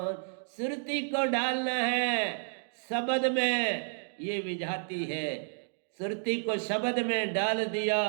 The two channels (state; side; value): silent; left; 57 dB below the other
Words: सुरती को डालना है शब्द में, ये विजाती है। सुरती को शब्द में डाल दिया,